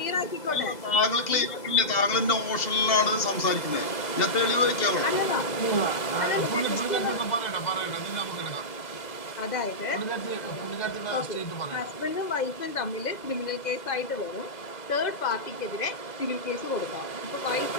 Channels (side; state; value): right; late; 2.0 ms